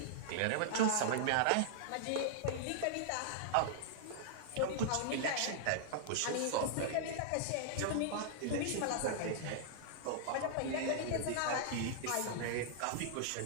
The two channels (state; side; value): different; both; correlation -0.01